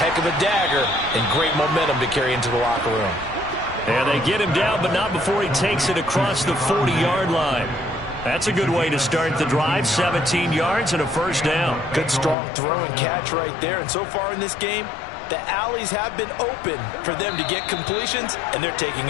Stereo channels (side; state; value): right; drops out; at 12.4 s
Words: of a dagger and great momentum to carry into the locker room. And they get him down, but not before he takes it across the 40-yard line. That's a good way to start the drive. 17 yards and a first down. Good strong throw and catch right there. And so far in this game, The alleys have been open for them to get completions, and they're taking